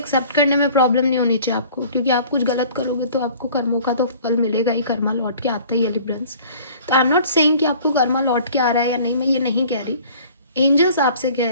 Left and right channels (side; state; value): both; inverted; correlation -0.49